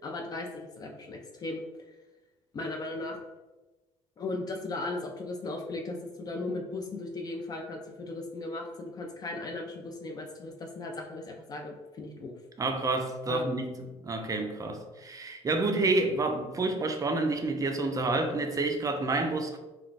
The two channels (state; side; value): normal; both; correlation 0.47